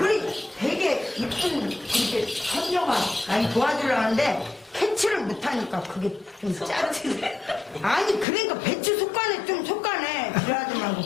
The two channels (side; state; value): right; drops out; at 8.2 s